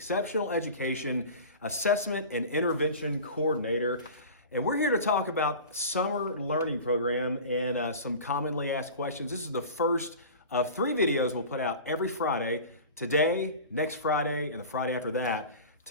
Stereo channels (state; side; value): inverted; both; correlation -0.36